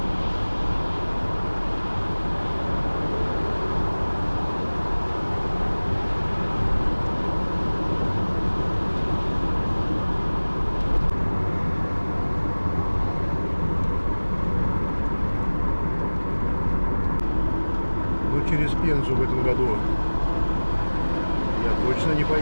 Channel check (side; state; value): both; inverted; correlation -1.00